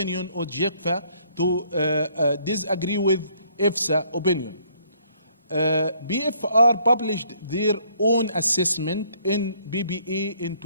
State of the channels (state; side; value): inverted; both; correlation -0.65